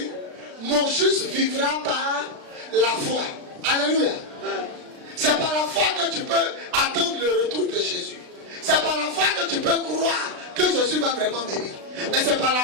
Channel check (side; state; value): left; late; 36 ms